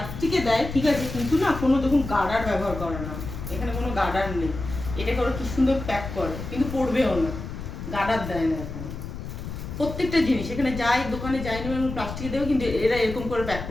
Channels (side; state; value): left; noise; rumble, 8 dB below the sound